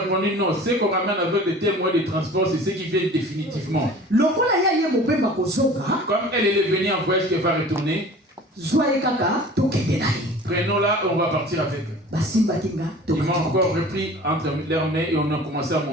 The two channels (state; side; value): normal; both; correlation 0.43